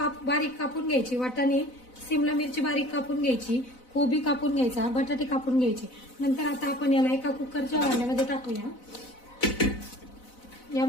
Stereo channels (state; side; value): late; right; 4.0 ms